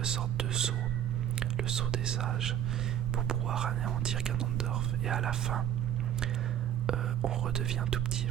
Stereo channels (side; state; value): left; quieter; 10.5 dB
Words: sortes de sceaux, le sceau des sages, pour pouvoir anéantir Ganondorf. Et à la fin, on redevient tout petit,